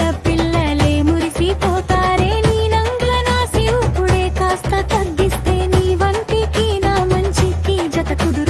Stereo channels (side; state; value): both; identical; correlation 1.00